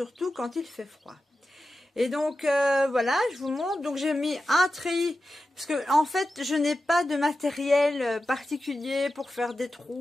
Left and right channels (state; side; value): normal; both; correlation 0.92